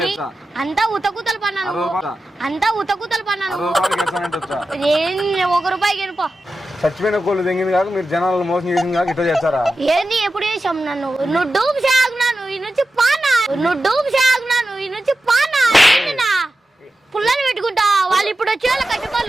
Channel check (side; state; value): both; normal; correlation 0.93